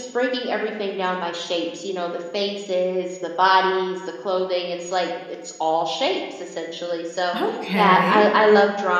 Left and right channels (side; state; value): both; identical; correlation 1.00